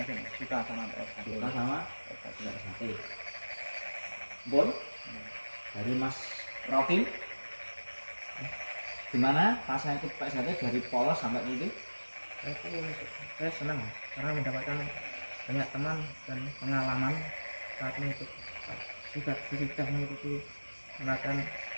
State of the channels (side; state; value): both; inverted; correlation -1.00